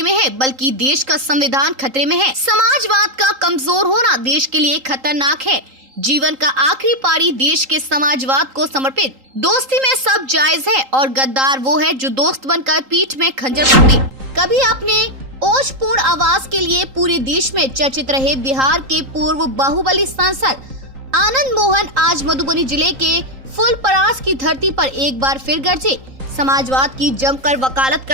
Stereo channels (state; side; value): late; left; 3.8 ms